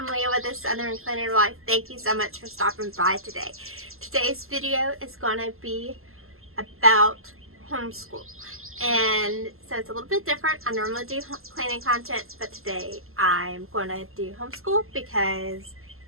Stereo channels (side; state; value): left; late; 0.62 ms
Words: Leah with the Southern Cleaner Life. Thank you so much for stopping by today. Today's video is going to be about homeschool. And so it's a little bit different. I normally do cleaning content, but today I'm going to do homeschool because